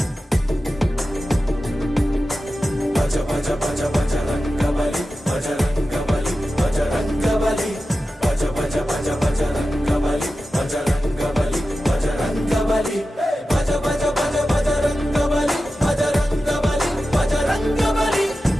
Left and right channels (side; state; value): both; normal; correlation 0.93